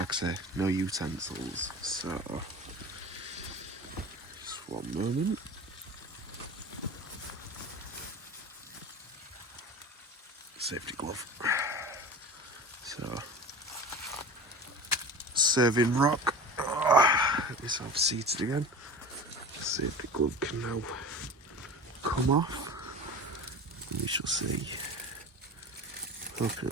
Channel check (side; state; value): both; normal; correlation 0.33